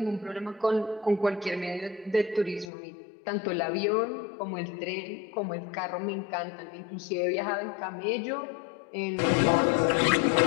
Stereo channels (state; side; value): drops out; right; at 2.7 s